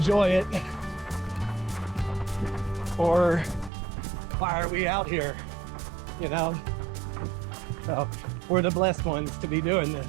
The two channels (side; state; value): left; drops out; at 3.7 s